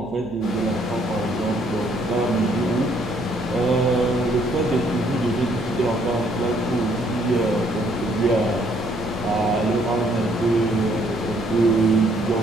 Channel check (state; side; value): noise; right; hum, 19 dB below the sound